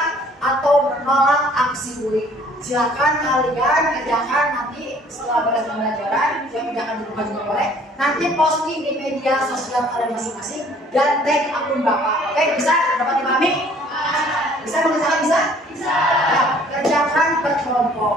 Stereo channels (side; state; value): both; normal; correlation 0.56